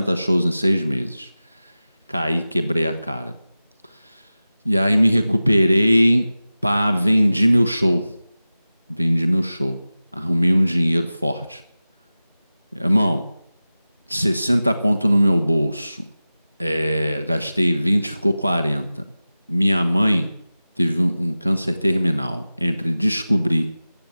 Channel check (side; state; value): both; inverted; correlation -0.96